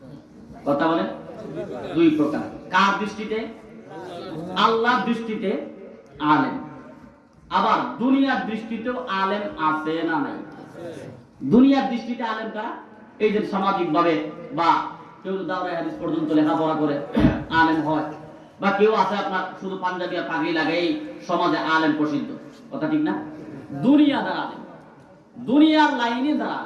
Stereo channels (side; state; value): both; identical; correlation 1.00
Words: কথা বলেন। দুই প্রকার। কার দৃষ্টিতে? আল্লাহর দৃষ্টিতে আলেম। আবার দুনিয়ার দৃষ্টিতেও আলেম আছে না নাই? দুনিয়ার দৃষ্টিতে আলেম কারা? এই যে সামাজিক ভাবে বা কেউ দাওরায়ে হাদিস পর্যন্ত লেখাপড়া করে আলেম হয়, বা কেউ আছে আপনার শুধু পাঞ্জাবি আর পাগড়ি লাগাই সমাজে আলেম প্রসিদ্ধ। কথা ঠিক না? দুনিয়া যারা আলেম, দুনিয়ার লাইনে যারা